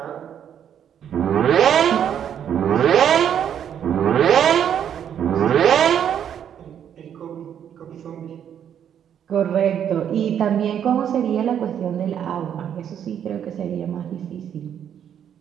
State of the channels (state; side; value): quieter; left; 9.1 dB